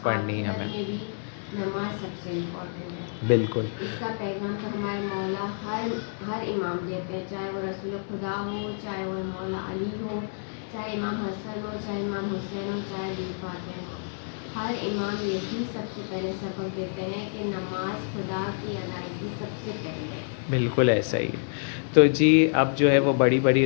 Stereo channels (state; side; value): silent; right; digital silence